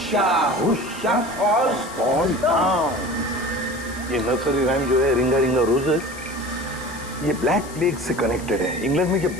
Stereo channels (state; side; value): noise; left; hiss, 17 dB below the sound